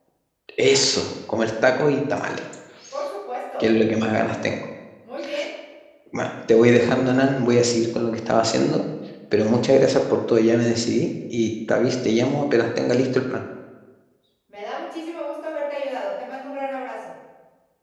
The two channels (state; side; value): identical; both; correlation 1.00